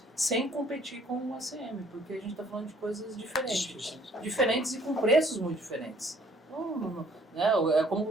Sem competir com o ACM, porque a gente está falando de coisas diferentes e com preços muito diferentes. Né? É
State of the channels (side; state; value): both; normal; correlation 0.59